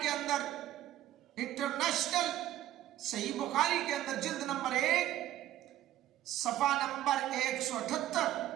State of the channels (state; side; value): quieter; left; 13.4 dB